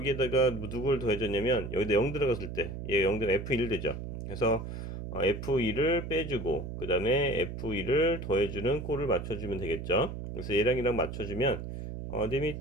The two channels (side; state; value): right; noise; hum, 7 dB below the sound